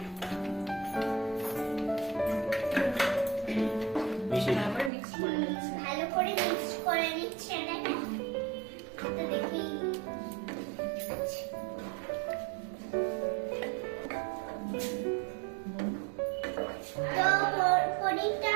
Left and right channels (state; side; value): drops out; left; at 4.9 s